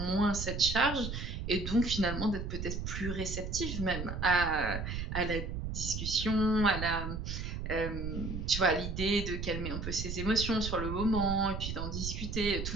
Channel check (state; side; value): noise; right; rumble, 4 dB below the sound